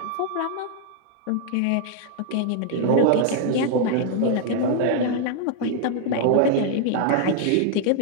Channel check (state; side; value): different; both; correlation 0.00